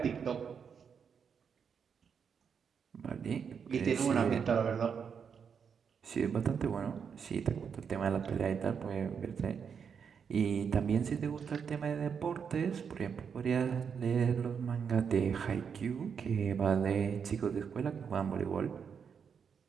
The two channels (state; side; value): quieter; left; 6.7 dB